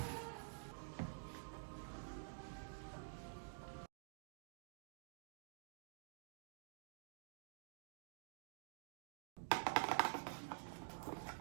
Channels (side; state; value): left; silent; digital silence